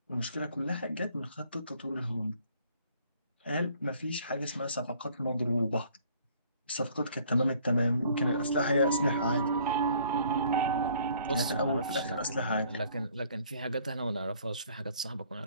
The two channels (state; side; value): inverted; both; correlation -0.58